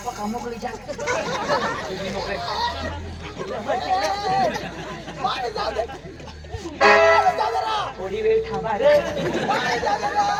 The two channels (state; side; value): identical; both; correlation 1.00